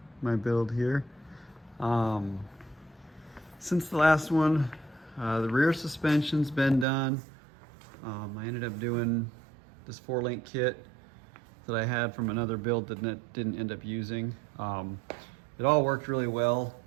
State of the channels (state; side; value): drops out; left; at 6.9 s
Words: build here. Since the last one, the rear suspension's been done. I ended up doing this 4-link kit that I had from another build that didn't end up using. It all worked really well